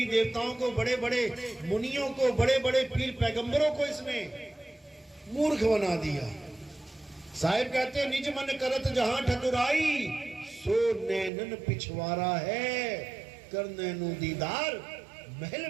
देवताओं को, बड़े बड़े मुनियों को, बड़े बड़े पीर पैगंबरों को इसने मूर्ख बना दिया। साहिब कहते निज मन करत जहां ठकुराई, सो नैनन पिछवारा है, कर नैनो दीदार महल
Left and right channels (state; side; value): drops out; left; at 11.3 s